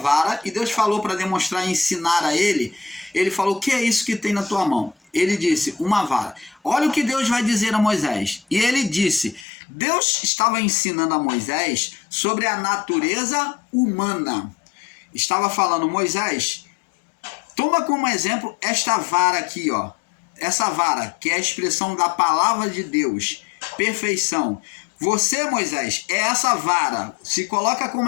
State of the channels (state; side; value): drops out; right; at 9.5 s